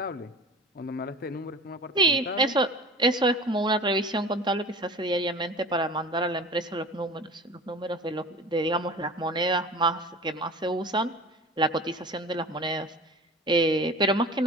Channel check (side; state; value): both; normal; correlation 0.38